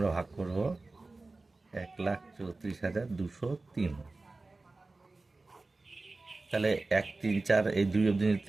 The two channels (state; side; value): quieter; left; 3.4 dB